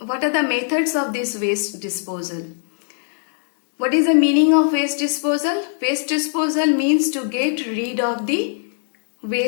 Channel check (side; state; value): right; silent; digital silence